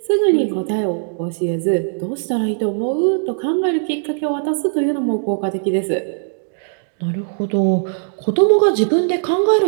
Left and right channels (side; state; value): left; silent; digital silence